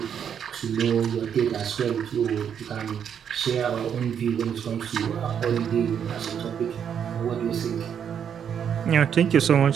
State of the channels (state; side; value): quieter; left; 8.2 dB